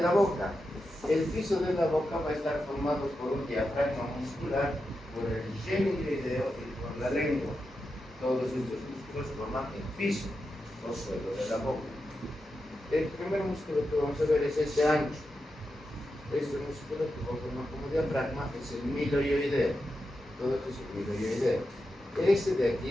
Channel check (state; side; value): normal; both; correlation 0.88